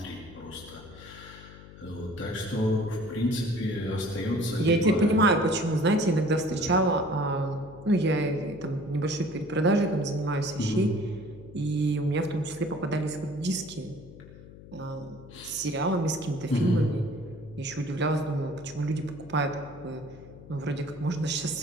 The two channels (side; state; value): left; noise; hum, 18 dB below the sound